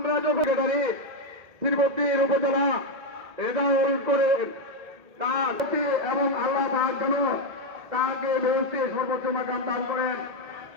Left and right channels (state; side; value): late; left; 2.0 ms